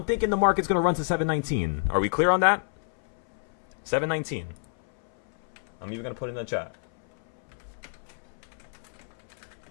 thinking the market's going to run to 719. Are we clear on that? 719. I'm even going to put it in the chat.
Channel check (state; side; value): silent; right; 59 dB below the other